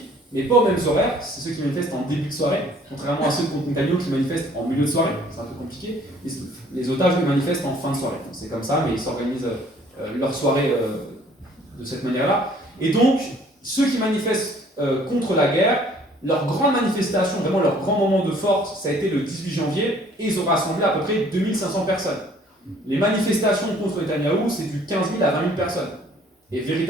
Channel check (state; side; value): normal; both; correlation 0.57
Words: mais pas aux mêmes horaires. C'est ceux qui manifestent en début de soirée, contrairement à ceux contre Netanyahou qui manifestent en milieu de soirée. C'est un peu compliqué. Les otages les manifestent en fin de soirée. C'est comme ça, mais ils s'organisent leur soirée de cette manière-là. Et donc, ceux qui manifestent contre la guerre, leur grande manifestation, vraiment leur grand moment de force, ça a été le 18 janvier, et ils ont rassemblé à peu près 2500 personnes. Les manifestations contre Netanyahou, c'est du 15 000 à 20 000 personnes. Et